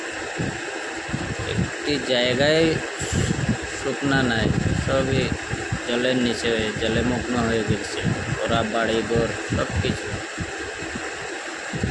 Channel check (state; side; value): identical; both; correlation 1.00